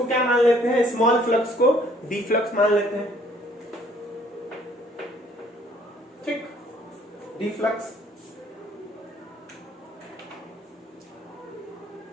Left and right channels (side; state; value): both; normal; correlation 0.61